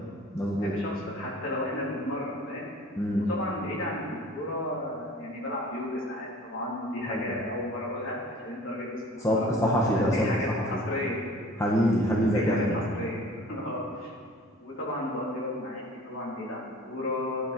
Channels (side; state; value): both; normal; correlation 0.46